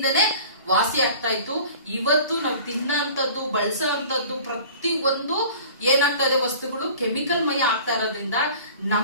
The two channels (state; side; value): inverted; both; correlation -0.44